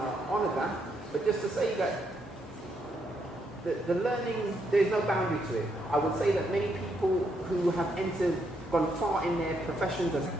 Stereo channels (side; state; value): both; normal; correlation 0.76